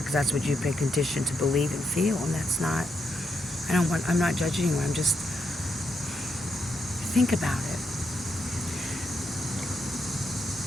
that's what you've been conditioned to believe and feel, and that's not, I'm not judging you, I'm just, think about it.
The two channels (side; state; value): both; normal; correlation 0.80